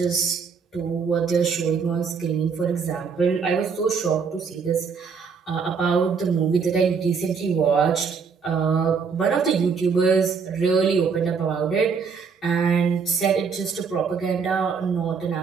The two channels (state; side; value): quieter; left; 5.7 dB